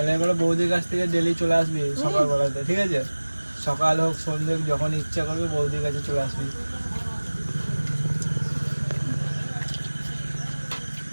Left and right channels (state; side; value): inverted; both; correlation -1.00